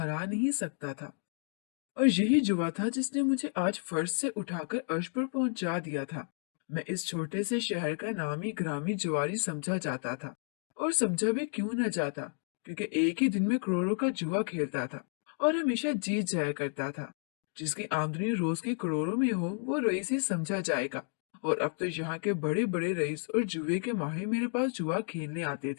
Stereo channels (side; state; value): right; silent; 57 dB below the other